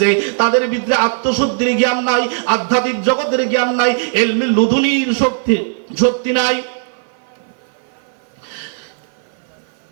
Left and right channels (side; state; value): left; silent; 56 dB below the other